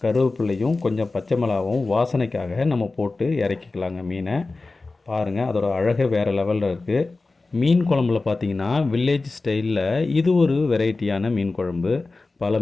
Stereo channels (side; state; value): right; quieter; 3.5 dB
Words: கருவேப்பிலையும் கொஞ்சம் பச்சை மிளகாவும் வாசனைக்காக நம்ம போட்டு இறக்கிக்கலாங்க மீனை. பாருங்கள், அதோட அழகே வேறு லெவலில் இருக்குது. மீன் குழம்புல பார்த்திங்கன்னா வில்லேஜ் ஸ்டைலில் இது ஒரு வெரைட்டியான மீன் குழம்பு. பல